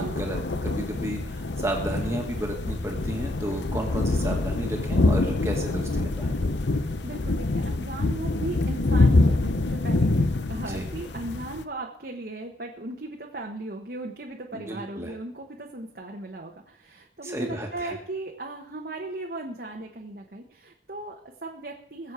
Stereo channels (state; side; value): normal; both; correlation 0.75